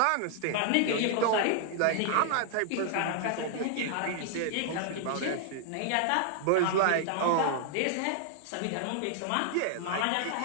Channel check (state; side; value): different; both; correlation 0.00